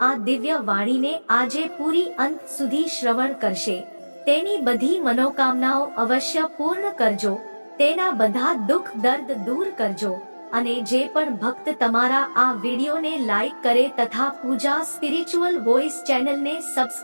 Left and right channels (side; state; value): both; inverted; correlation -1.00